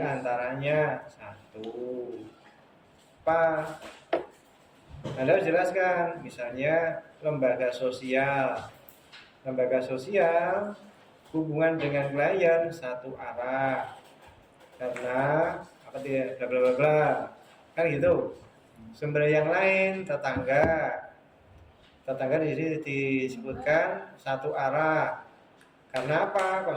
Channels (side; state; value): both; identical; correlation 1.00